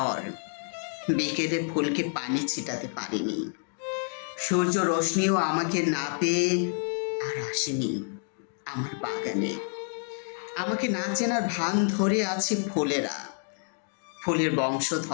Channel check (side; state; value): right; silent; 59 dB below the other